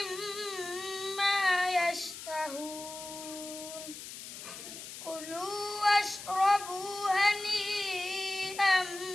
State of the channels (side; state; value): left; noise; hiss, 11 dB below the sound